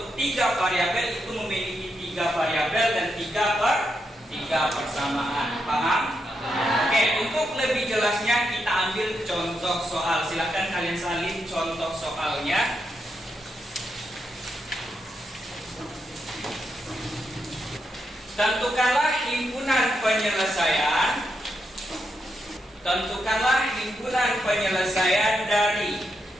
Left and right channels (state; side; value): normal; both; correlation 0.83